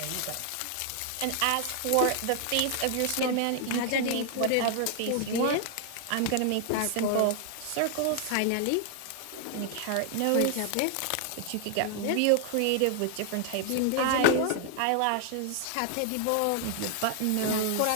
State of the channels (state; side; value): different; both; correlation 0.00